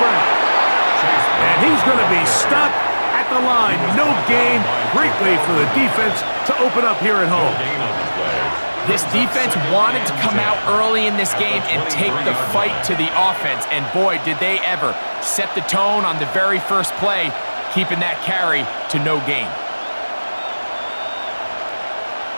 Brown. And he's going to be stopped at the line. No gain. Great way for the defense to open up here at home. This defense wanted to come out early in this game and take the fight to the offense. And boy, did they ever set the tone on the very first play, keeping that carry to no gain.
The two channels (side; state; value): both; inverted; correlation -1.00